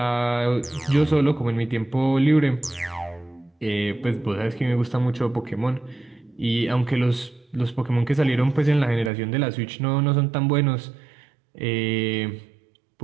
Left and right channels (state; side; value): drops out; left; at 9.1 s